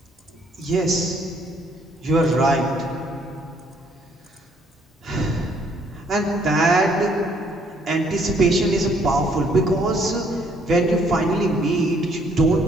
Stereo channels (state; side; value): normal; both; correlation 0.65